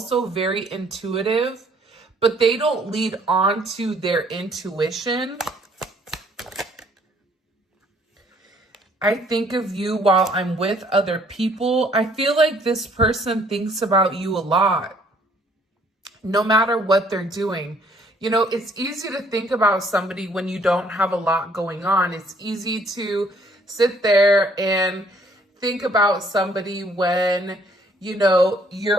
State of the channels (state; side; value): normal; both; correlation 0.62